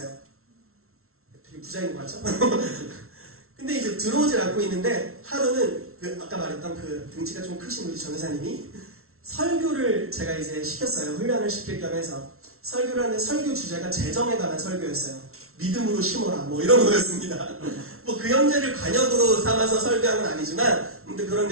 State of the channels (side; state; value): left; late; 0.62 ms